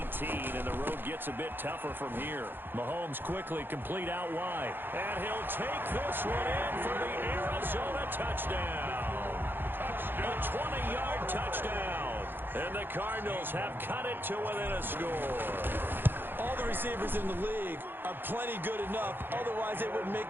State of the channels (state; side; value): late; left; 0.099 ms